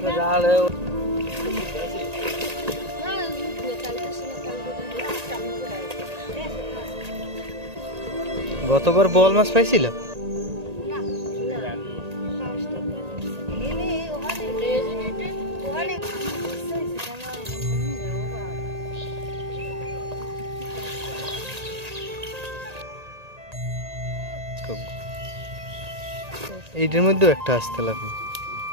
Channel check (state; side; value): late; left; 1.8 ms